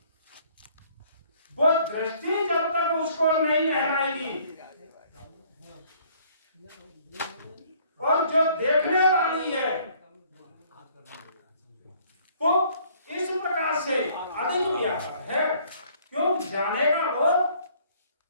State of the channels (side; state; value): both; inverted; correlation -0.60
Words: वो दृष्टि जब तक उसको नहीं लहराएगी, और जो देखने वाली है वो इस प्रकार से अधिक व्यापक है। क्यों? जानेगा वो